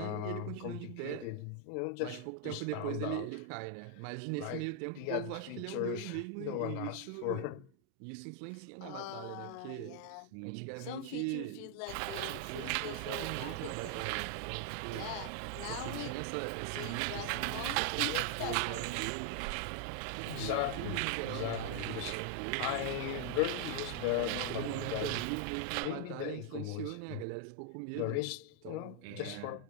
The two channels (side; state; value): both; different; correlation 0.00